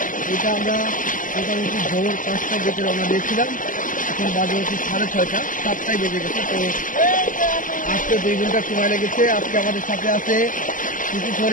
এটা আমরা মোটামুটি ভোর 5টার দিকে রওনা দিয়েছিলাম, এখন বাজে হচ্ছে 6:30, 7টায় বেজে গেছে। তো আজকে 2 ঘন্টা সময় লেগেছে। আজকে আমাদের সাথে আছে শিশু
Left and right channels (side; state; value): right; late; 0.38 ms